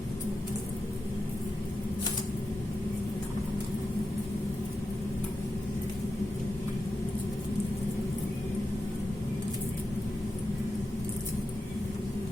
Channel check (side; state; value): both; normal; correlation 0.90